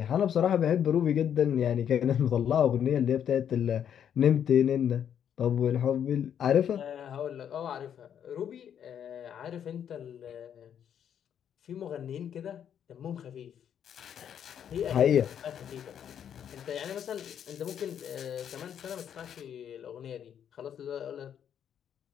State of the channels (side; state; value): right; quieter; 9.0 dB